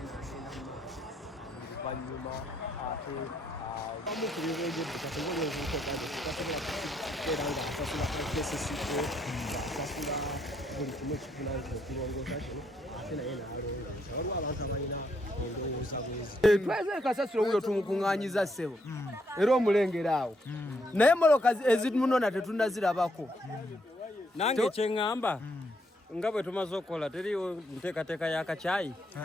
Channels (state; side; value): normal; both; correlation 0.74